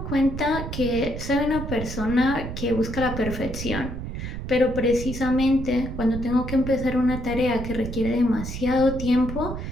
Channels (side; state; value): right; noise; rumble, 7 dB below the sound